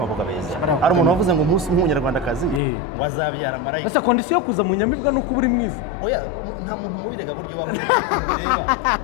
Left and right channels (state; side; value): drops out; right; at 2.6 s